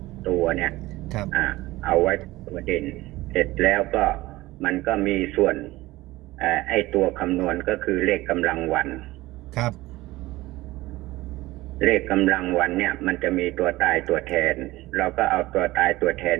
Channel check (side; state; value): left; quieter; 18.7 dB